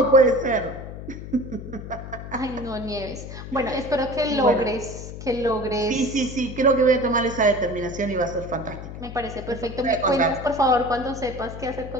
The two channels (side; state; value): left; noise; hum, 10 dB below the sound